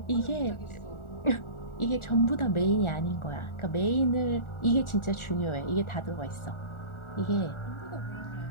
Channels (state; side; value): late; right; 1.4 ms